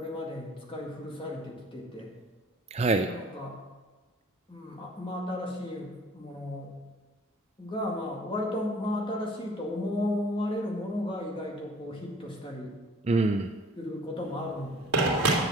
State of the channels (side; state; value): both; normal; correlation 0.50